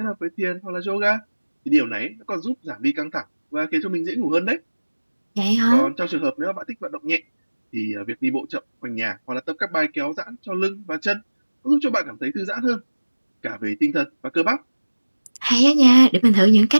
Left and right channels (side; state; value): both; inverted; correlation -1.00